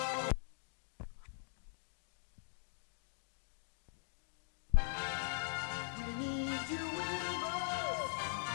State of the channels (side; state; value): right; silent; digital silence